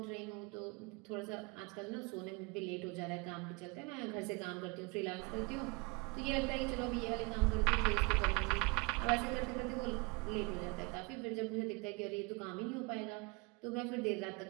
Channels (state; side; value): quieter; left; 27.4 dB